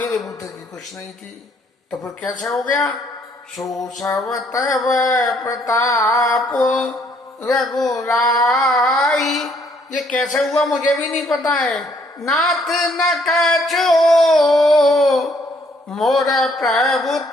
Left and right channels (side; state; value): both; normal; correlation 0.66